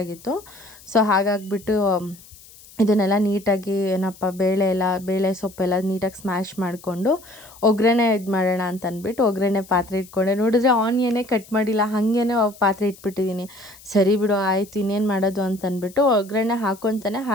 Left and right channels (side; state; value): left; noise; hiss, 22 dB below the sound